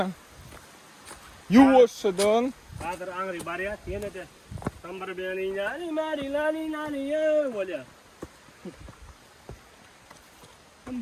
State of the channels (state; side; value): identical; both; correlation 1.00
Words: Yuvuşudun. Hazır angri bariyat yine de. Sambar beni lani ya böyle.